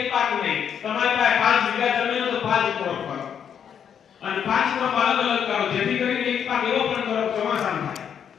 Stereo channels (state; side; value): quieter; right; 8.2 dB